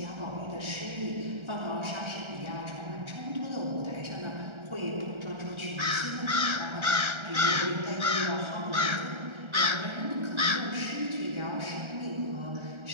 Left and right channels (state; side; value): late; left; 1.3 ms